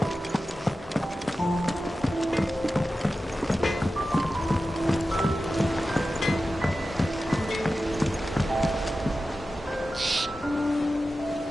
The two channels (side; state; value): both; normal; correlation 0.93